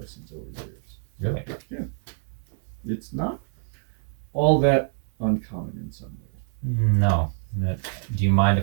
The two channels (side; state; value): left; silent; digital silence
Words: over the years. Really? It's not all that uncommon in some ways. No. Do you mind